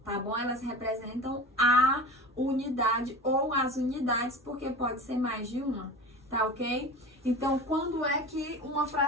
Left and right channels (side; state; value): both; normal; correlation 0.33